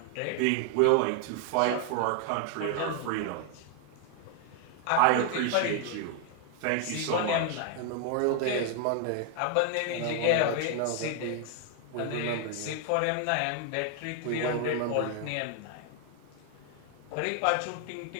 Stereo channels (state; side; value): different; both; correlation 0.00